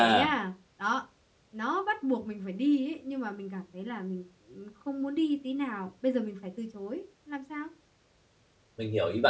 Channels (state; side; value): identical; both; correlation 1.00